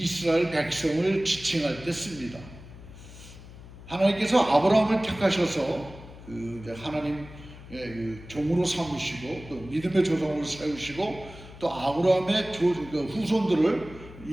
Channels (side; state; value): left; noise; hum, 17 dB below the sound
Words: 백성을 지칭할 때 씁니다. 하나님께서 아브라함을 택하셔서 하나님의 종으로 삼으시고 또 믿음의 조상으로 세우시고 또 아브라함의 후손들을